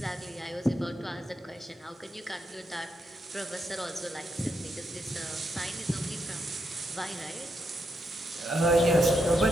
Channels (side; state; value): both; normal; correlation 0.81